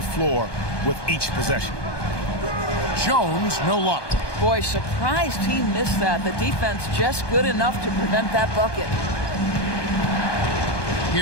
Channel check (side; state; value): right; late; 1.2 ms